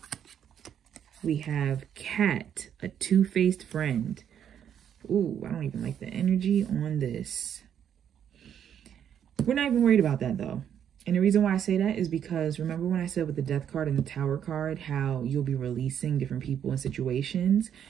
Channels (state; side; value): quieter; left; 9.1 dB